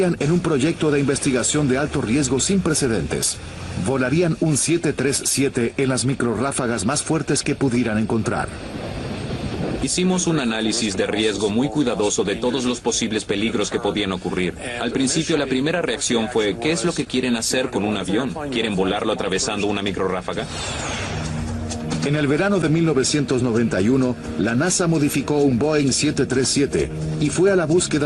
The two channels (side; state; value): both; identical; correlation 1.00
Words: en un proyecto de investigación de alto riesgo sin precedentes. Volarían un 737 en las microrráfagas más fuertes que pudieran encontrar. Hicimos un análisis de riesgo muy cuidadoso de todos los posibles peligros que podían ocurrir. Al principio, la primera reacción fue, ¿qué es lo que quieren hacer con un avión? ¿Quieren volarlo atravesando una microrráfaga? En el verano de 1991, la NASA modificó un Boeing 737 y fue a la